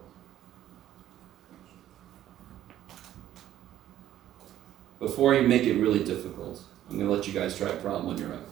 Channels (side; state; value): left; quieter; 12.3 dB